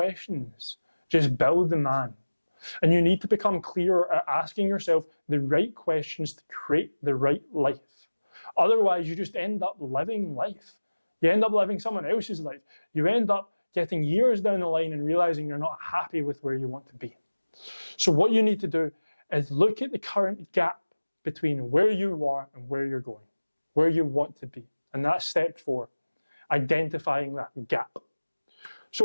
Just build the man. And you need to become clearer at asking yourself the right questions to create the right life. Otherwise, you just end up living life. You end up living someone else's life. You end up getting years down the line and realizing you're not happy with where you want to be. So what you need to do is look at the current gap between where you are and where you're going, where you want to be. And that's step 4, identifying that gap.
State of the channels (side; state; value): both; inverted; correlation -1.00